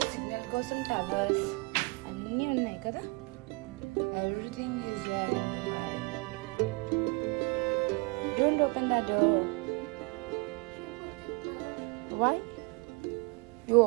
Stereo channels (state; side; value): quieter; left; 29.1 dB